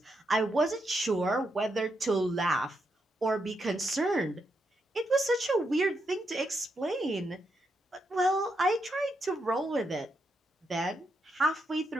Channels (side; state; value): both; normal; correlation 0.82